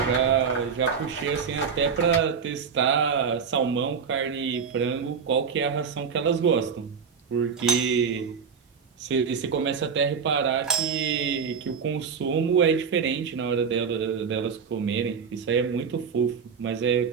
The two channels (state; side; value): quieter; left; 6.2 dB